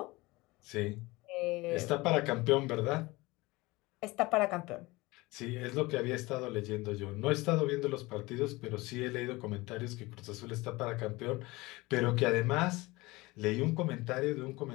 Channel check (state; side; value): quieter; right; 21.8 dB